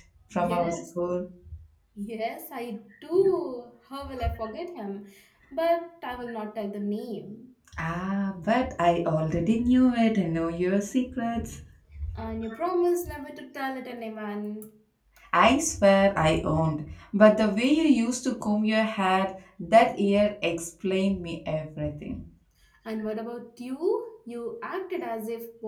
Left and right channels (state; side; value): identical; both; correlation 1.00